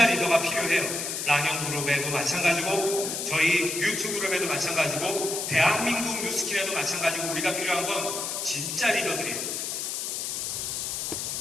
리더가 필요해요. 랑형그룹에도 마찬가지고 저희 유튜그룹에도 마찬가지고 대한민국 뉴스킨에도 마찬가지고 우리가 필요한 건 진짜 리더들이에요.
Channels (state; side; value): noise; left; hiss, 3 dB below the sound